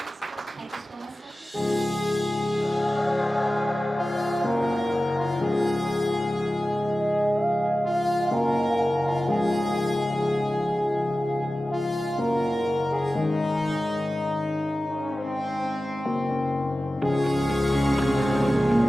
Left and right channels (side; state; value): both; normal; correlation 0.95